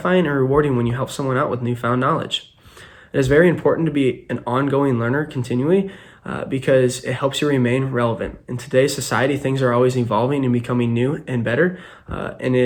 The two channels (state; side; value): identical; both; correlation 1.00